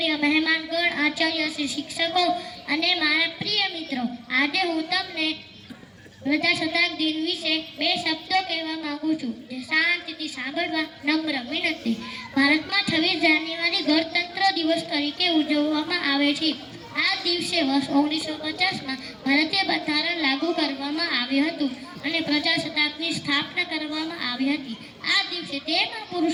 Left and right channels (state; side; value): identical; both; correlation 1.00